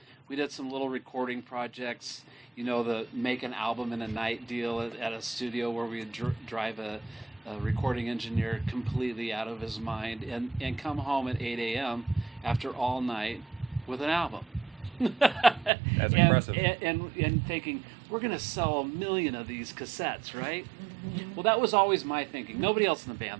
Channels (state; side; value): drops out; left; at 15.7 s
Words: we did some little recording projects. The make an album in a night deal at a studio where we would drive a recording engineer completely out of his mind and come home at 8 a.m. after all night with an album. That's impressive. And thinking, we're going to sell 1 million of these cassettes, right? Well, that was always my thinking. Nobody else in the